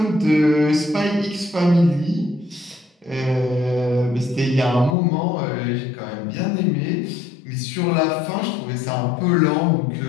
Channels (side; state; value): right; drops out; at 5.0 s